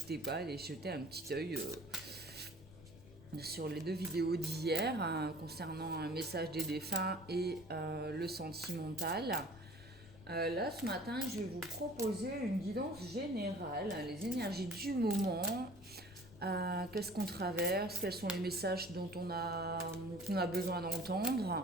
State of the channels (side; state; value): left; noise; rumble, 19 dB below the sound